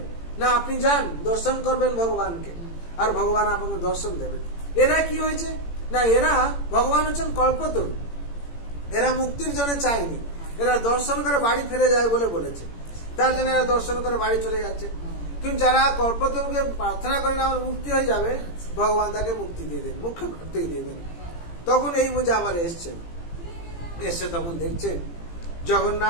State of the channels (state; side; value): late; right; 18 ms